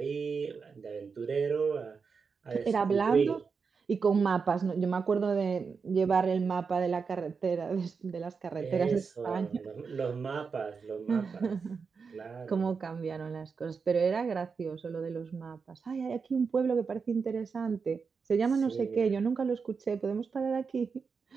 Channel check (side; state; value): left; quieter; 5.4 dB